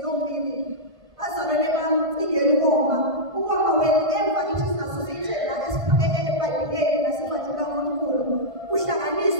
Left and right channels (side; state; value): left; late; 1.5 ms